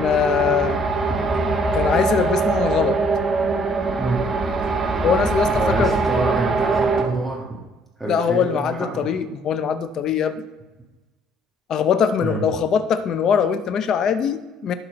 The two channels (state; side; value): normal; both; correlation 0.62